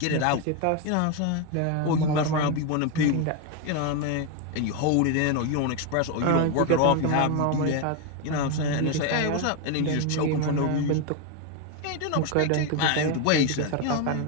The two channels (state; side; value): different; both; correlation 0.02